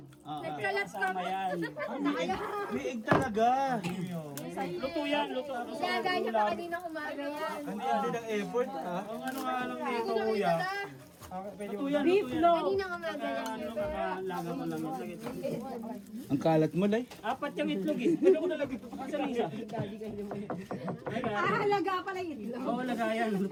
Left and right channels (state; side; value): identical; both; correlation 1.00